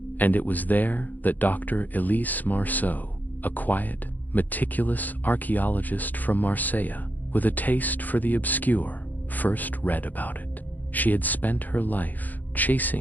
and it was there that Dr. Elise Marceau, a quiet, meticulous archaeologist from Marseille, with a taste for the obscure, first read about it. She had spent her life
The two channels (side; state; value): right; late; 0.084 ms